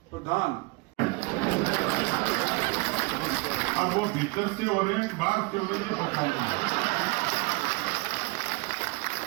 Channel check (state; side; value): quieter; left; 26.6 dB